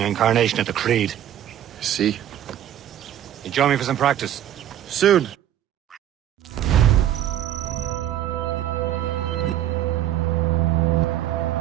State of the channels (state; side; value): quieter; left; 11.5 dB